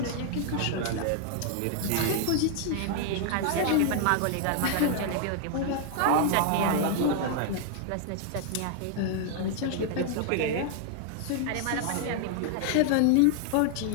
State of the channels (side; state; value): both; different; correlation 0.00